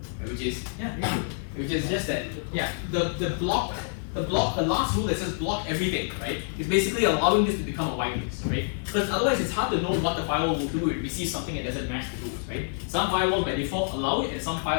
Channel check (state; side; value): silent; right; 56 dB below the other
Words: right? Which is which is just that, the last rule that says block everything, right, is basically allowing this to become a whitelist, right? Because otherwise it's hard to know what the firewall will do if it receives something that doesn't match the rules, right? Some firewalls by default allow it, and some